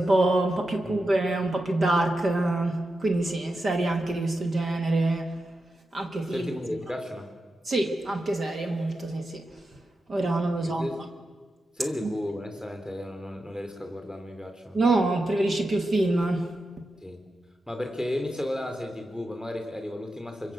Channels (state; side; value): normal; both; correlation 0.89